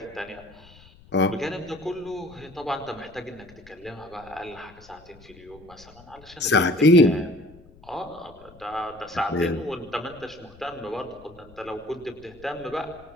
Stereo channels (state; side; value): noise; left; rumble, 23 dB below the sound